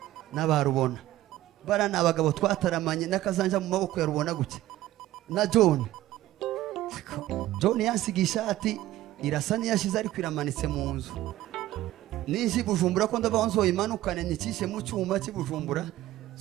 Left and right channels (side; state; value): left; quieter; 15.2 dB